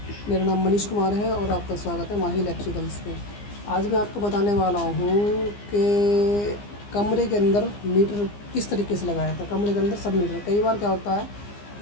मेरा नाम मनीष कुमार है और आपका स्वागत है माही इलेक्ट्रिकल्स पे। आज मैं आपको बताने वाला हूँ कि कमरे के अंदर मीटर किस तरीके से लगाया था। कमरे के अंदर सब मीटर, कई बार क्या होता है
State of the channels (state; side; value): late; right; 15 ms